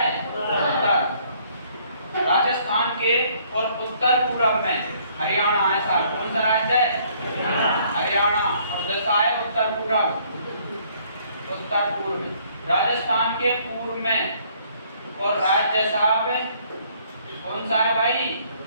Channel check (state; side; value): inverted; both; correlation -0.63